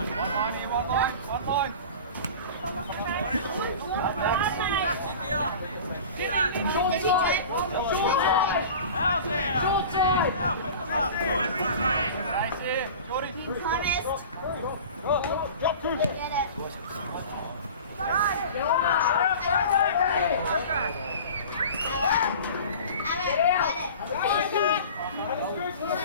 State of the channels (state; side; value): inverted; both; correlation -0.38